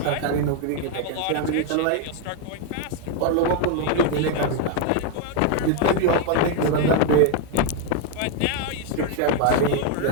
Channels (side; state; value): both; different; correlation 0.01